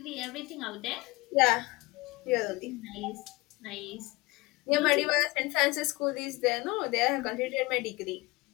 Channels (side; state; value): right; quieter; 22.7 dB